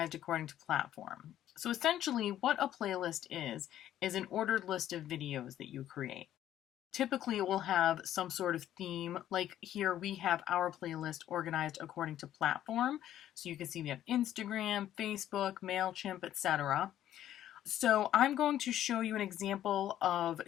according to platform. So essentially what a playlist is an ordered list of videos that you create. Typically it will have some sort of theme, like here we have our playlist organized according to platform. So you can see we have Instagram, Facebook, MailChimp, etc. So I'm going to show you an example of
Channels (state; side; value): quieter; right; 11.9 dB